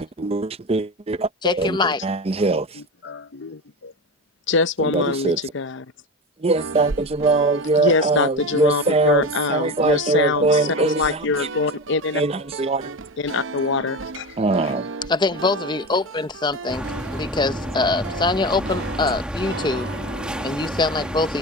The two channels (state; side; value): normal; both; correlation 0.24